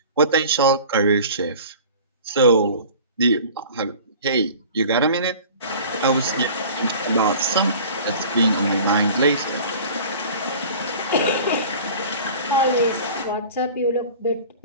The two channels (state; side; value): inverted; both; correlation -0.42